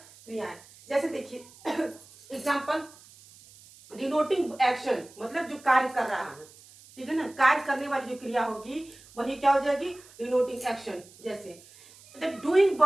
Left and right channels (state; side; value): noise; right; hiss, 23 dB below the sound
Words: क्रियाएं। जैसे देखिए एग्जाम्पल, डिनोटिंग एक्शन मतलब जो कार्य कर रहा है, ठीक है ना। कार्य करने वाली जो क्रिया होगी वही क्या हो जाएगी, डिनोटिंग एक्शन। जैसे डूइंग